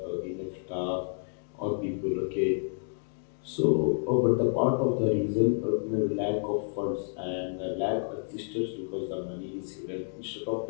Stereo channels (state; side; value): silent; right; digital silence